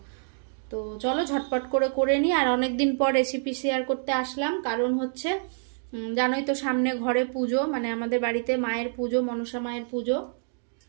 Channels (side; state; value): left; silent; digital silence